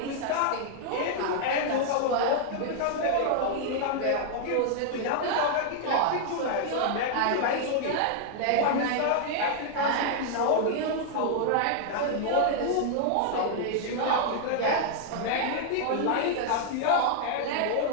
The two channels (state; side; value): different; both; correlation -0.01